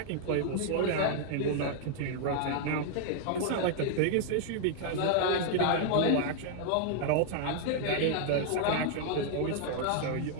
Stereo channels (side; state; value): both; different; correlation 0.00